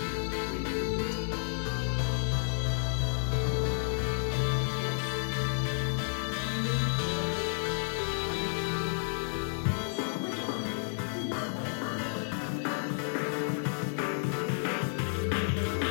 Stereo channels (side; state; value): right; silent; digital silence